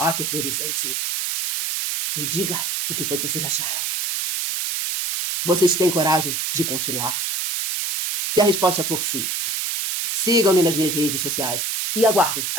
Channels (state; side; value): noise; right; hiss, 1 dB below the sound